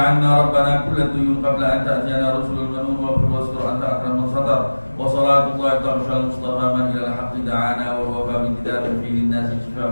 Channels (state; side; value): inverted; both; correlation -1.00